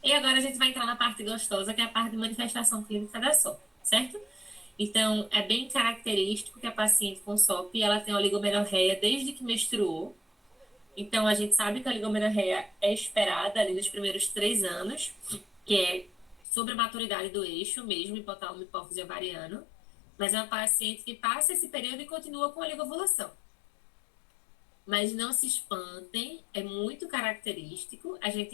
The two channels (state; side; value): drops out; right; at 16.4 s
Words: e agora a gente vai entrar na parte gostosa, que é a parte de manifestação clínica da SOP, certo? Então, é bem característico que a paciente com SOP, ela tem oligomenorreia desde que menstruou. Então, a gente sabe que a oligomenorreia é esperada ali nos primeiros 3 anos, que é sobre a maturidade do eixo mesmo, hipotálamo e hipófise ovariano, mas é uma paciente que passa esse período e continua com a oligovulação. Mas não se espantem, é muito característico a